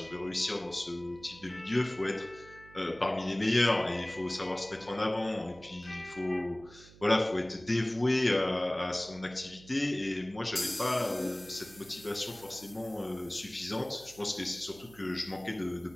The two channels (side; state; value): right; noise; hum, 21 dB below the sound